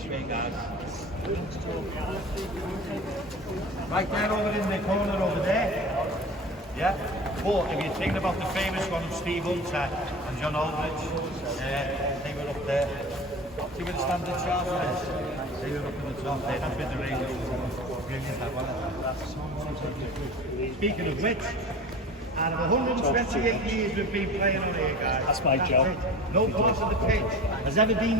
way, guys. Right there over in the corner over there. Yeah? But if you're thinking about the famous one of Steve Hunter and John Aldridge, they were up there. See where the standard charge is? They were up in the top there, that's with the radio. Brilliant, that one. Speaking of which, out of 128 years we've been playing on here, guys. That's my job. No part of the pitch has ever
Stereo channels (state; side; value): normal; both; correlation 0.37